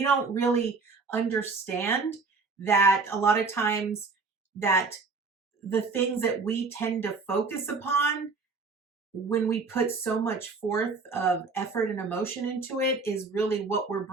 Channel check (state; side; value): quieter; left; 4.3 dB